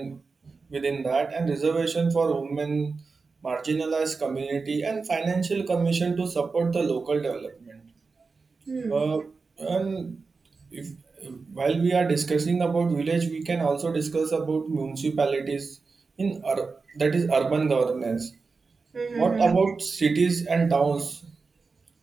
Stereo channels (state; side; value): quieter; left; 4.4 dB